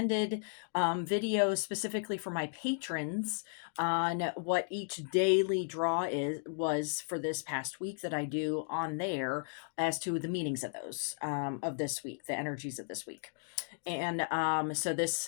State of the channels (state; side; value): silent; right; digital silence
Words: videos specifically for my patrons on what each daily draw was for this past week that I do on there as to the meanings of those of this week, the energies of this week. And so